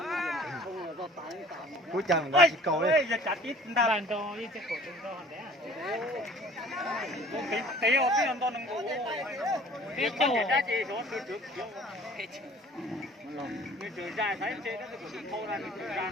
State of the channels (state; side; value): normal; both; correlation 0.50